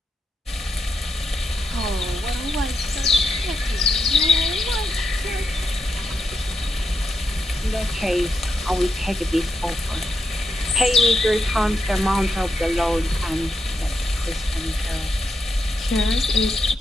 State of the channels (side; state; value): both; normal; correlation 0.83